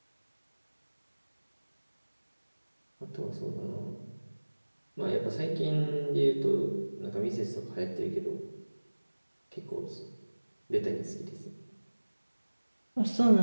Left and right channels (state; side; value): inverted; both; correlation -1.00